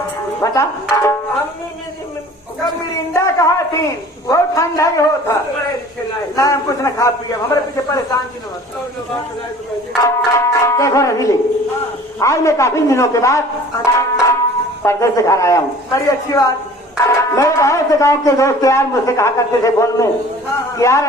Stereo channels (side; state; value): both; normal; correlation 0.47